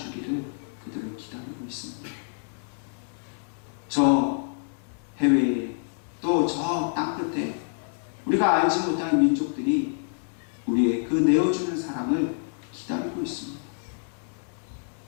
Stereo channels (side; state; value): right; silent; digital silence